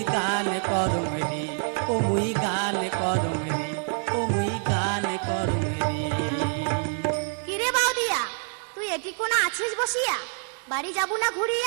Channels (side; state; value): left; silent; 61 dB below the other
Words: গান করং রে ও মুই গান করং রে ও মুই গান করং রে। কিরে বাউদিয়া, তুই এটি কোন আছিস বসিয়া? বাড়ি যাবো না